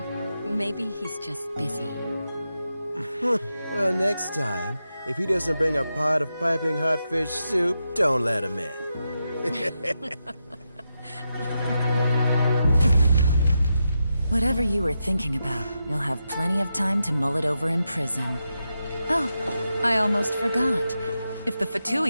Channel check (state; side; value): inverted; both; correlation -0.87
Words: Maybe he's just busy. Well, next time, if he doesn't bring a pot of piping hot fish soup, don't let him in. Whatever you were thinking about, you'll have plenty of time to mull it over in prison. Oh, I almost forgot. If the